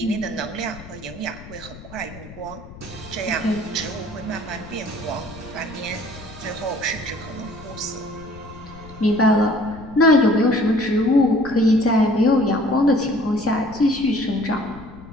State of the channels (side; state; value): left; noise; rumble, 17 dB below the sound